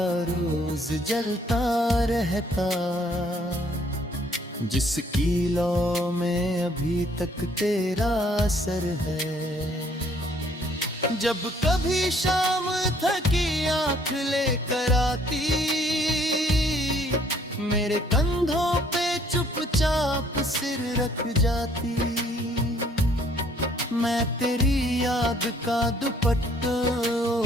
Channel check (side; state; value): both; normal; correlation 0.62